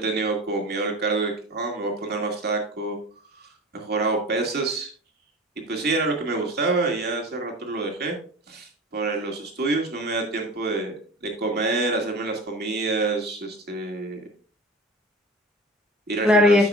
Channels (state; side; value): normal; both; correlation 0.35